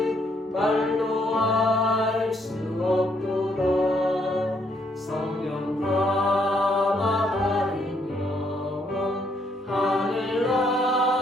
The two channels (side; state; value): both; normal; correlation 0.71